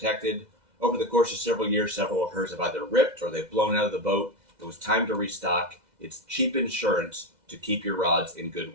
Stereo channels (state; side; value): late; left; 2.0 ms